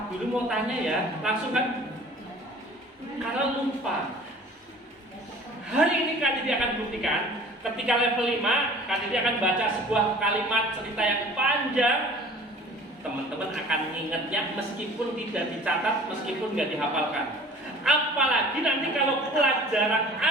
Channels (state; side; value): normal; both; correlation 0.46